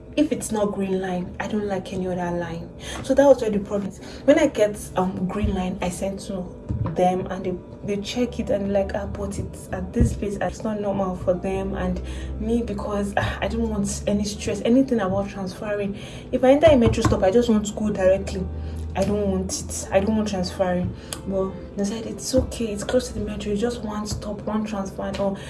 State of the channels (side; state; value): both; identical; correlation 1.00